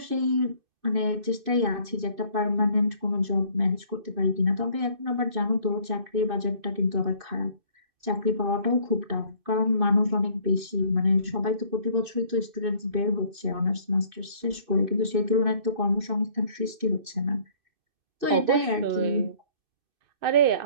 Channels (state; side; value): late; left; 2.6 ms